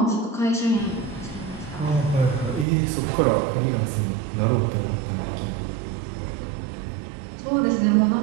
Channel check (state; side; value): drops out; left; at 2.7 s